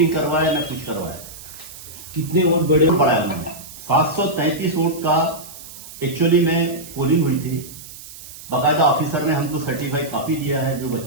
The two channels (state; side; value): noise; right; hiss, 15 dB below the sound